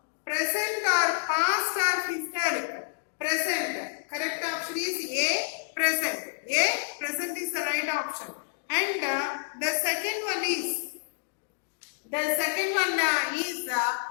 present or past or historic. Present. Correct option is A, present. A, present is the right option. And the second one is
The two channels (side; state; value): right; silent; digital silence